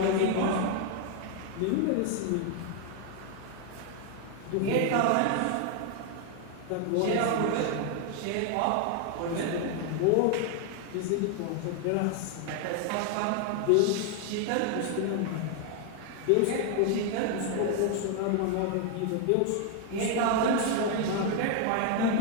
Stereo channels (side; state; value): both; different; correlation 0.00